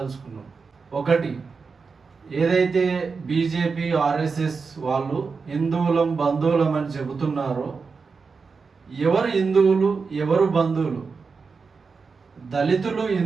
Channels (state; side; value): quieter; left; 4.9 dB